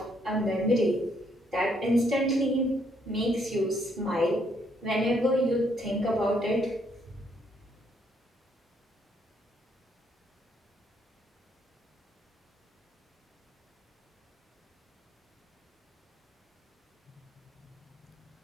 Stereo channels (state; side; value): normal; both; correlation 0.71